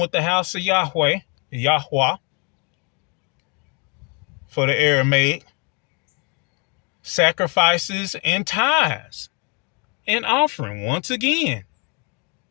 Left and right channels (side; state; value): right; quieter; 34.4 dB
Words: with the house of Yahweh for the Aramaic. Sacrifices and tithes and offering once again.